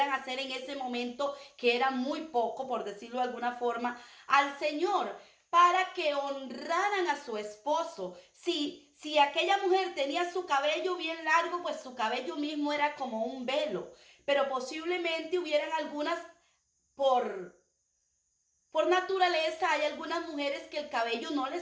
hacer en ese momento, que era muy poco, por decirlo de alguna forma, al Señor, para que honraran a su esposo. Si aquella mujer tenía su cabello bien largo, pues su cabello mismo era como un velo. Pero posiblemente hubieran algunas, por naturaleza, hay algunas mujeres que el cabello no les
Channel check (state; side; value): identical; both; correlation 1.00